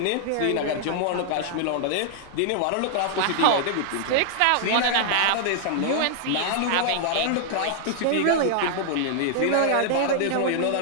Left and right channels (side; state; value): both; different; correlation -0.01